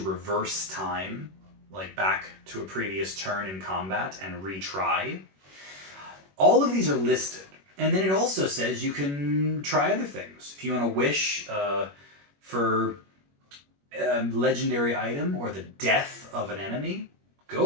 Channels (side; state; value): left; late; 21 ms